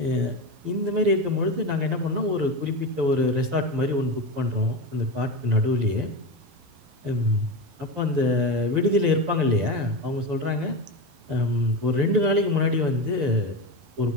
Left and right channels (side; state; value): left; late; 12 ms